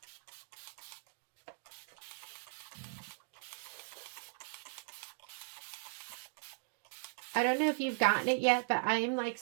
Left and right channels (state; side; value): silent; left; digital silence